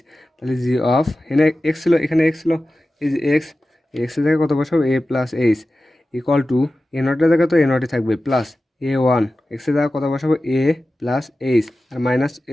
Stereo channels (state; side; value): normal; both; correlation 0.94